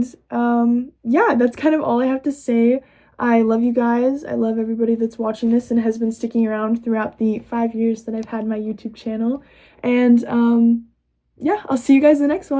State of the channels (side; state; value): both; identical; correlation 1.00